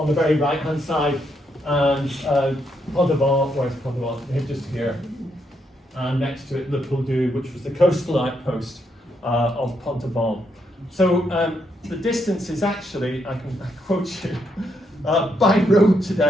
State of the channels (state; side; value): normal; both; correlation 0.78